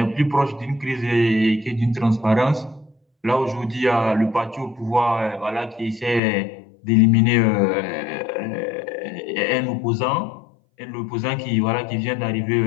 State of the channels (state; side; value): drops out; right; at 6.2 s